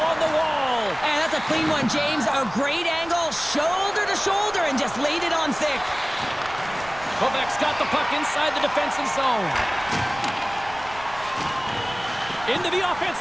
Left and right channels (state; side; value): noise; right; rumble, 19 dB below the sound